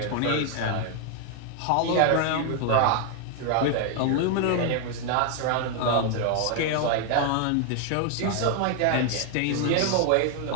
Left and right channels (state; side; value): different; both; correlation 0.00